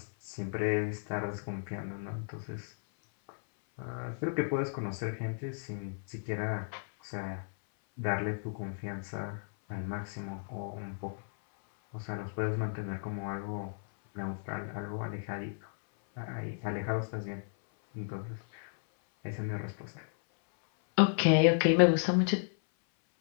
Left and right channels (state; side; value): silent; right; 55 dB below the other